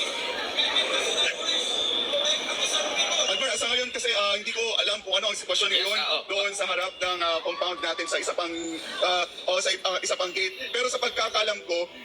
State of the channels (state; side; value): identical; both; correlation 1.00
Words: Albert, sa ngayon kasi hindi ko alam kung ano ang sitwasyon ngayon doon sa harap ng compound natin sa isa pang isa pang gate. Pero sa pagkakalam ko,